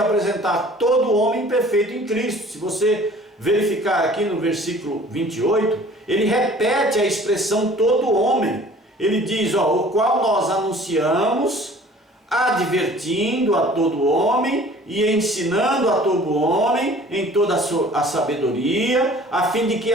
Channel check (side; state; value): both; normal; correlation 0.49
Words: todo homem perfeito em Cristo. Se você verificar aqui no versículo 28, ele repete a expressão todo homem. Ele diz, o qual nós anunciamos, advertindo a todo homem e ensinando a todo homem em toda a sabedoria, a fim de que